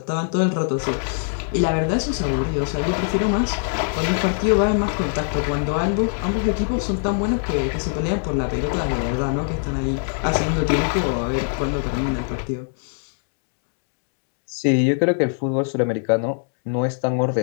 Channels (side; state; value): right; silent; 64 dB below the other